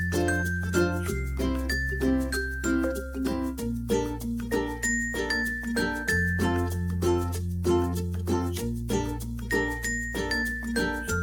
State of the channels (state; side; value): identical; both; correlation 1.00